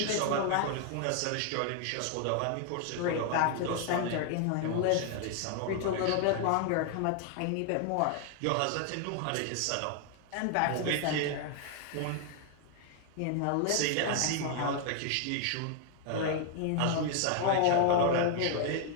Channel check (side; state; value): both; different; correlation 0.00